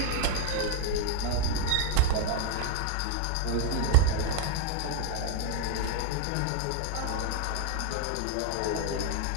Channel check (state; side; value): different; both; correlation 0.01